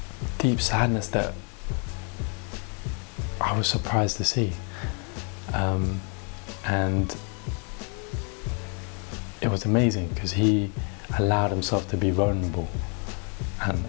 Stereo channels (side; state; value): right; quieter; 38.1 dB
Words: deep sadness that I was surprised to see. And it was amazing because he allowed himself to be vulnerable, and